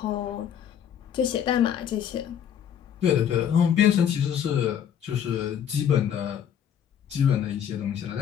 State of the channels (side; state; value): right; quieter; 9.0 dB